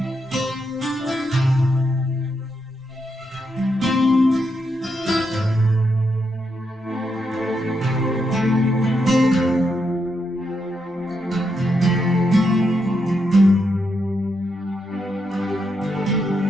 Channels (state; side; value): normal; both; correlation 0.82